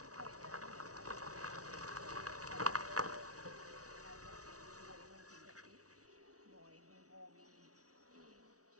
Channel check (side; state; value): left; late; 0.67 ms